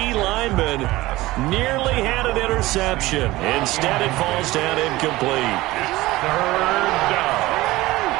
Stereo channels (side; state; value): left; quieter; 18.6 dB